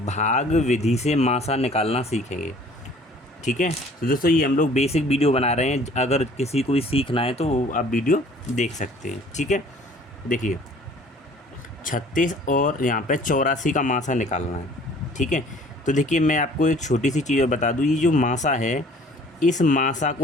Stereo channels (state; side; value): normal; both; correlation 0.53